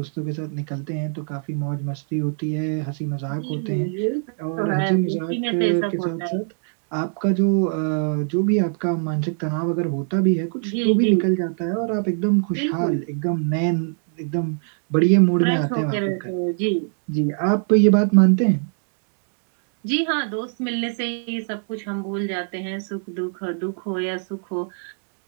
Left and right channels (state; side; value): silent; left; 61 dB below the other